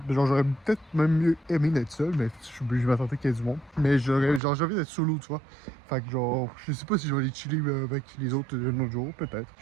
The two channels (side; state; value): left; drops out; at 4.4 s